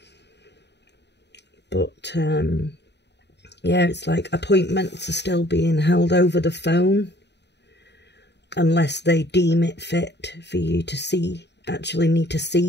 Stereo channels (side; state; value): right; late; 0.50 ms